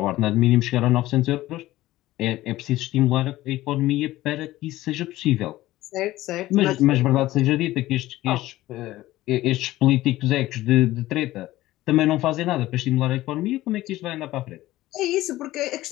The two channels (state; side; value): quieter; right; 16.4 dB